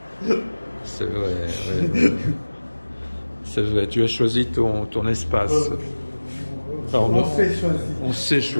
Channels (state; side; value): inverted; both; correlation -1.00